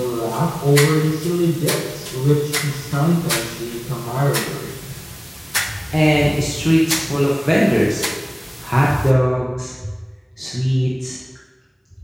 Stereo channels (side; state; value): both; identical; correlation 1.00